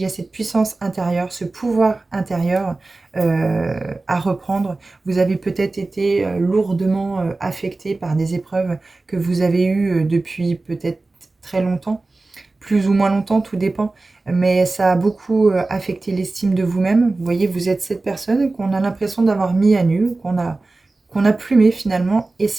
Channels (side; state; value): left; quieter; 3.3 dB